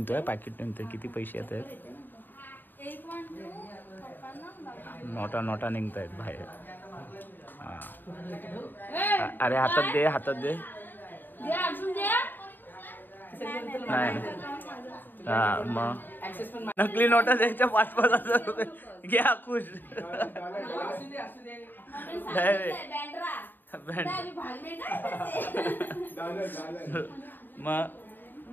किती पैसे येत आहेत. नोटा निघत आहेत बाहेर. अरे हातात दे. नाही हा मग नकली नोटा द्यायच्या 5,000 रुपये घ्या खुश. मग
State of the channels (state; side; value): late; right; 0.092 ms